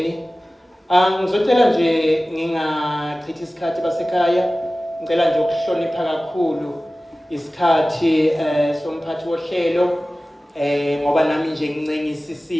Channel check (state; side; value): normal; both; correlation 0.97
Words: Ngizocela nje ngingachithi isikhathi basekhaya, ngicela nje ukuhlonipha kakhulu isikhathi somphathi wohlelo ngoba nami nje